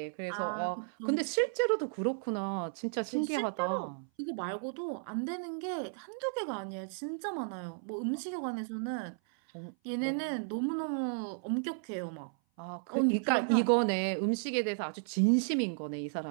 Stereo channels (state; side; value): silent; left; 55 dB below the other